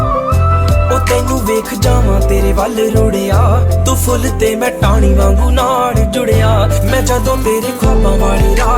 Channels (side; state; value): both; identical; correlation 1.00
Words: ओ तैनू वेख जावां तेरे वल रुड़िया, तू फुल ते मैं टाणी वांगू नाल जुड़िया। मैं जदों तेरे ख्वाबां वाली